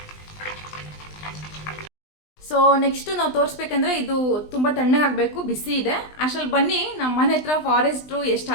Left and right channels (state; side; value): late; right; 20 ms